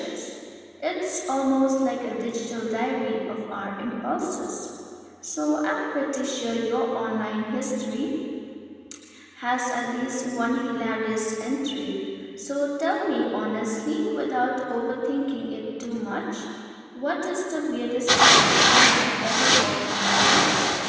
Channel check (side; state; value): both; identical; correlation 1.00